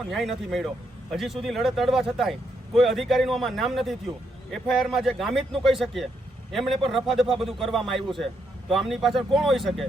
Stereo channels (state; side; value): normal; both; correlation 0.77